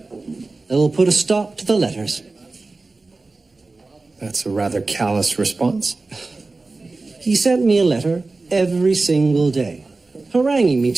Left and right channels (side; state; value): left; quieter; 3.5 dB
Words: I will put a stop to the letters. That's a rather callous response. He sent me a letter every single day, haranguing me